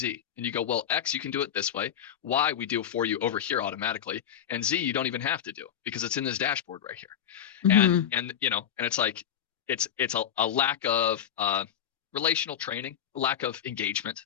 And you go, well, X, you can do it this way. Y, we do it for you over here automatically. And Z, you don't even have to do because it's in this dashboard right here. Mm-hmm. And it's like, it's a lack of relational training, a lack of engagement.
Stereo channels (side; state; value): right; quieter; 9.5 dB